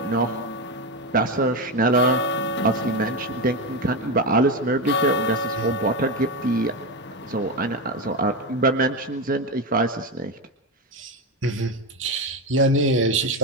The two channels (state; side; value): normal; both; correlation 0.13